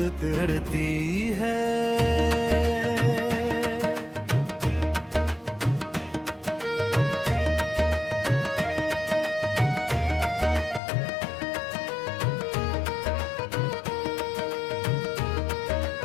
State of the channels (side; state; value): right; drops out; at 10.8 s